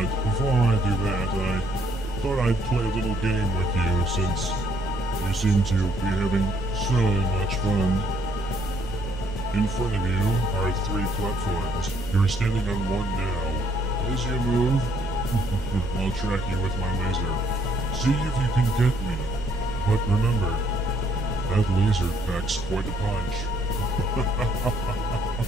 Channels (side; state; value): both; normal; correlation 0.67